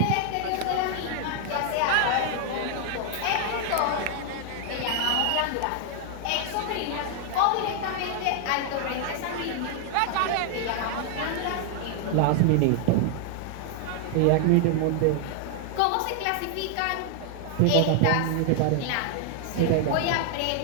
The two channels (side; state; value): both; different; correlation 0.00